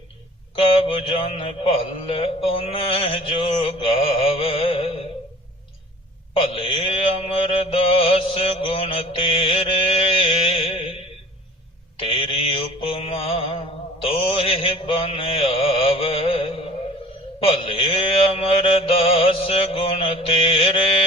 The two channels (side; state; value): both; normal; correlation 0.46